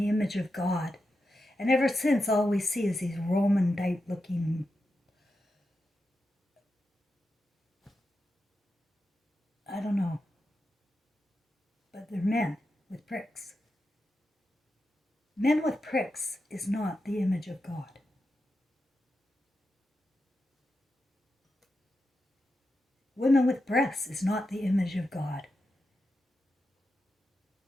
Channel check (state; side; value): normal; both; correlation 0.88